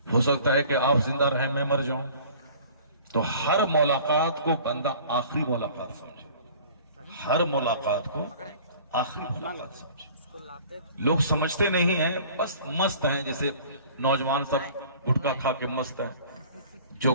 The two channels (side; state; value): both; inverted; correlation -0.48